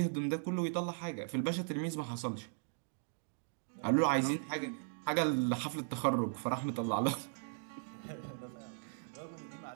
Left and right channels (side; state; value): left; silent; digital silence